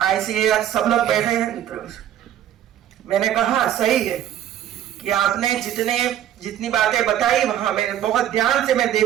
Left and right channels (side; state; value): left; quieter; 11.1 dB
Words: ICAR सब लोग बैठे हैं मित्रों। मैंने कहा सही है कि आपने जितनी बातें बताई वहां मैंने बहुत ध्यान से मैं